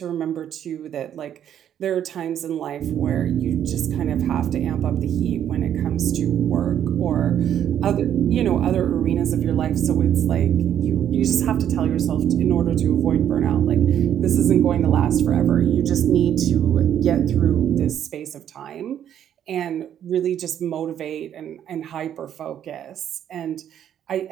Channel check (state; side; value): quieter; left; 10.0 dB